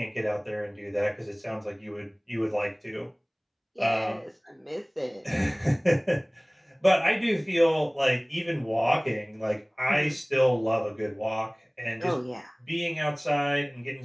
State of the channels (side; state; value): both; identical; correlation 1.00